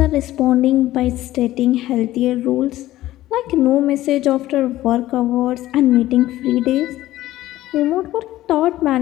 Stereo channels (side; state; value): right; quieter; 15.2 dB